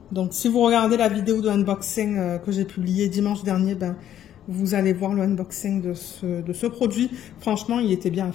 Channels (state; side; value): quieter; right; 10.9 dB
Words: Donc, si vous regardez la vidéo de unboxing que j'ai publiée dimanche dernier, ben, vous allez voir le unboxing de ce produit. Franchement, il était bien à